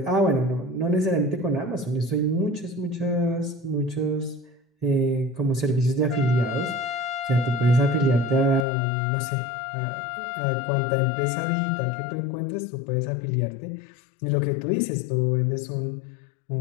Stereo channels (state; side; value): drops out; right; at 8.7 s